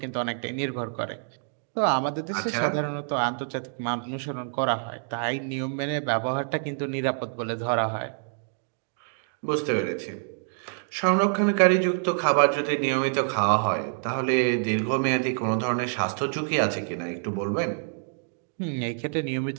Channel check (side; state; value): left; silent; digital silence